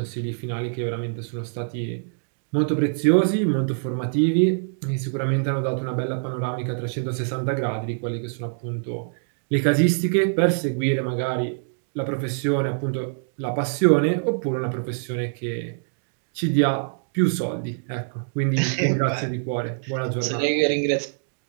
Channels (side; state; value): left; silent; digital silence